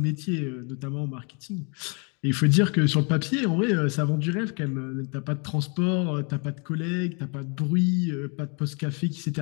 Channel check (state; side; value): quieter; right; 34.7 dB